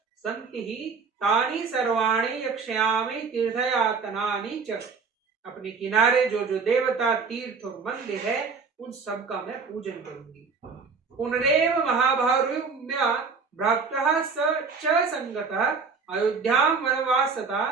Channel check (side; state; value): left; quieter; 5.1 dB